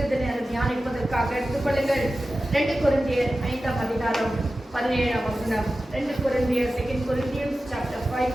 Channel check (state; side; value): normal; both; correlation 0.94